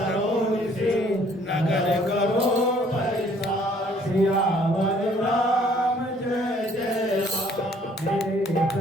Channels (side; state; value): both; normal; correlation 0.60